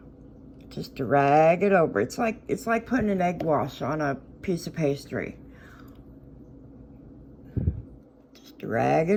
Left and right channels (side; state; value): both; identical; correlation 1.00